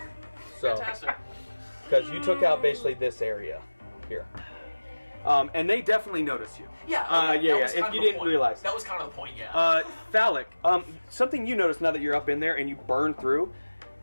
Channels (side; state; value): both; inverted; correlation -1.00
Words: So, Fantastic. because you took out basically this area here. And they definitely notice you. Yeah. That was if kind you of the didn't point. realize. That was kind of the point. Yeah. Phallic, something you notice now that you're up in there and you burn through,